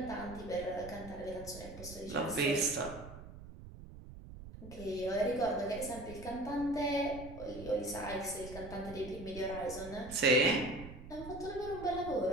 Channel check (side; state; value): right; noise; rumble, 13 dB below the sound